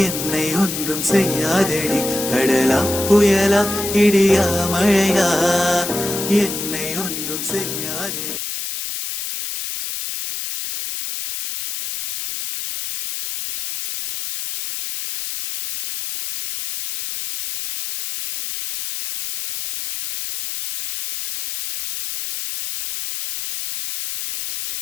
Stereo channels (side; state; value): left; noise; hiss, 6 dB below the sound